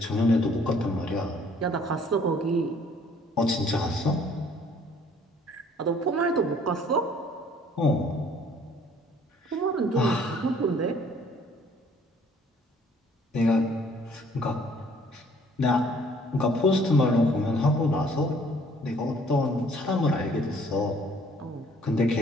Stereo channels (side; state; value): both; normal; correlation 0.58